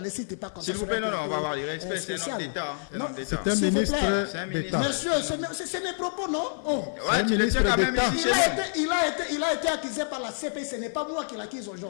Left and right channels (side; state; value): right; silent; 56 dB below the other